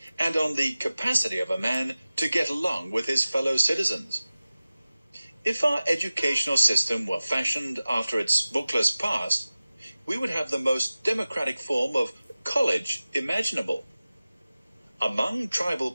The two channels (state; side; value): inverted; both; correlation -0.97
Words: and on the capacity of a man to get along with his fellow citizens. If our educational system were fashioned after its bookless past, we would have the most democratic form of college imaginable. Among tribal